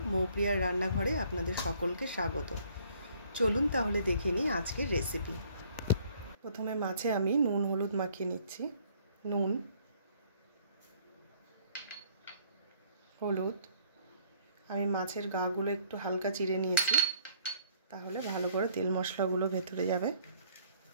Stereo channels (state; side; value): inverted; both; correlation -0.59